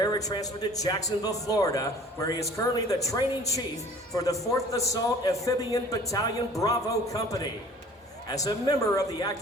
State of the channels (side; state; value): both; normal; correlation 0.49